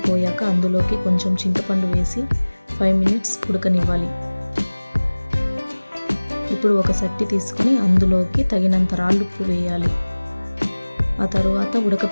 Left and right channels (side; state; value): both; inverted; correlation -1.00